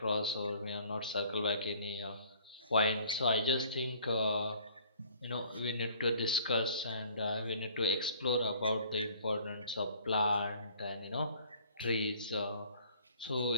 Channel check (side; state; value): both; inverted; correlation -0.54